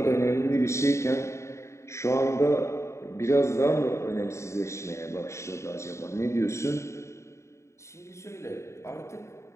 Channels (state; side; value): late; right; 0.14 ms